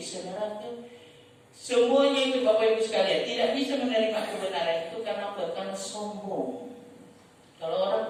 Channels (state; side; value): identical; both; correlation 1.00